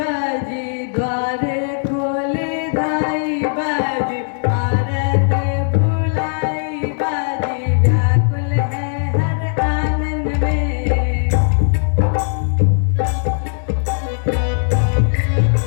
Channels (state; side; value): silent; right; digital silence